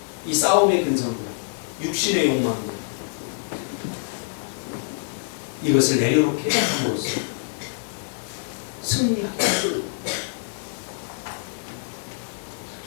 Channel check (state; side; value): silent; right; 62 dB below the other